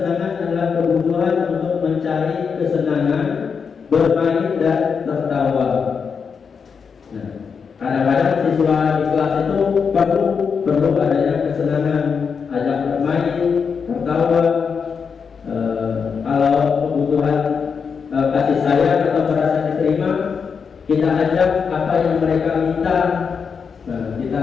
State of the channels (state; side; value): quieter; right; 6.0 dB